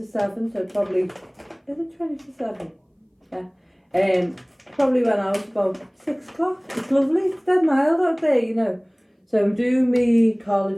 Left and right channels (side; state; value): both; identical; correlation 1.00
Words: 7, so probably, is it 20 to 7? Yeah. Probably went out about 6 o'clock. It's lovely, it's dead mild out there, you know. So I'm doing me